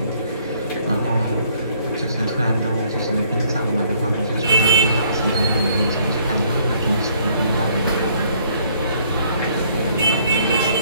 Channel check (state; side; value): inverted; both; correlation -0.64